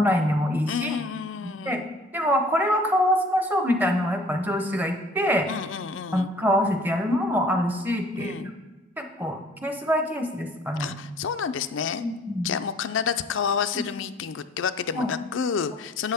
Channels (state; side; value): normal; both; correlation 0.53